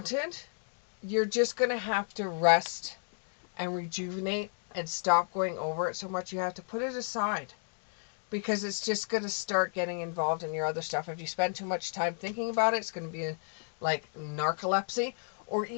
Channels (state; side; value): silent; right; 56 dB below the other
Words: you're just going to have to rest and rejuvenate and stop going over it so much. You have to put it aside, because it's just going to start getting involved in your other stuff. If you spend too much time thinking about it, it's going to be like narcolepsy, or